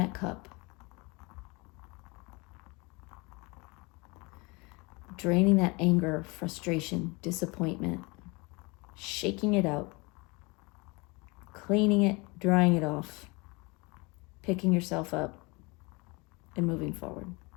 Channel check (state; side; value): quieter; right; 27.0 dB